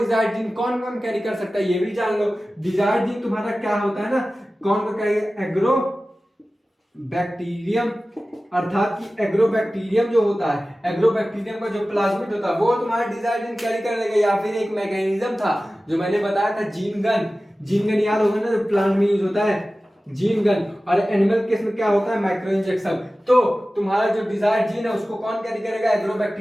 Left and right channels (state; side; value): normal; both; correlation 0.96